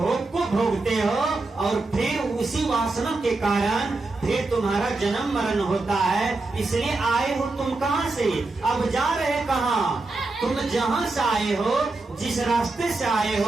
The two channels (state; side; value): quieter; left; 3.3 dB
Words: को भोगते हो और फिर उसी वासना के कारण फिर तुम्हारा जन्म मरण होता है। इसलिए आए हो तुम कहां से, अब जा रहे कहां। तुम जहां से आए हो, जिस रास्ते से आए